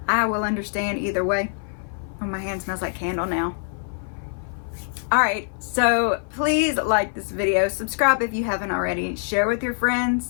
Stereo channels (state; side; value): silent; right; 55 dB below the other